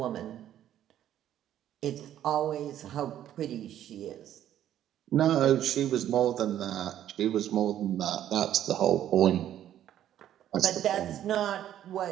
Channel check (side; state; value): left; quieter; 11.4 dB